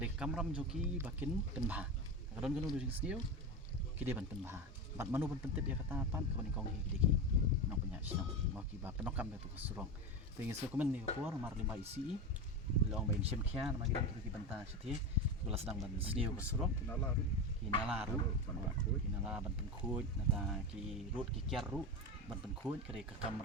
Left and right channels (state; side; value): normal; both; correlation 0.20